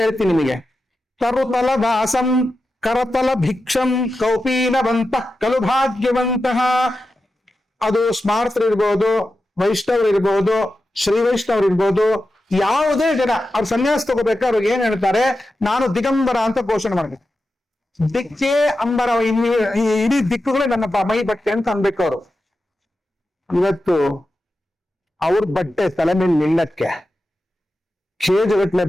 ಹೇಳ್ತೀನಿ ನಿಮಗೆ. ತರುತಲ ವಾಸಂ ಕರತಲ ಭಿಕ್ಷಂ ಕೌಪೀನವಂತ ಕಲು ಭಾಗ್ಯವಂತಹ. ಅದು ಸ್ಮಾರ್ತರು ಇರ್ಬೋದು, ವೈಷ್ಣವರು ಇರ್ಬೋದು, ಶ್ರೀ ವೈಷ್ಣವರು ಇರ್ಬೋದು, ಯಾವುದೇ ಜನ ಅವ್ರು ಸನ್ಯಾಸ ತಗೋಬೇಕಾದ್ರೆ ಅವ್ರಿಗೆ ಏನ್ ಹೇಳ್ತಾರೆ? ನಾನು ದಿಗಂಬರ ಅಂತ ಘೋಷಣೆ ಮಾಡ್ಬೇಕು. ದಿಕ್ಕೇ ಅಂಬರ, ಇಡೀ ದಿಕ್ಕುಗಳೇ ನನ್ನ ಮೈ ಬಟ್ಟೆ ಅಂತ ಅನ್ಬೇಕು ಅವರು. ಇವತ್ತು ಅವ್ರ ಬಟ್ಟೆ ತಲೆ ಮೇಲೆ ನಿಲ್ಲಕ್ಕೆ ಕೇಜಗಟ್ಲೆ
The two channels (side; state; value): both; normal; correlation 0.91